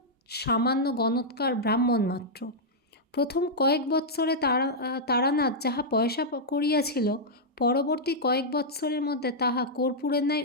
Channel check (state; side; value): normal; both; correlation -0.07